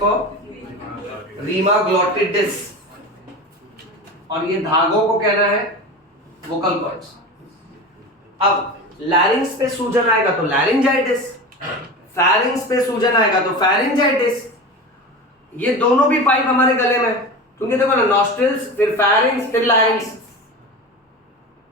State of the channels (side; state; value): both; normal; correlation 0.28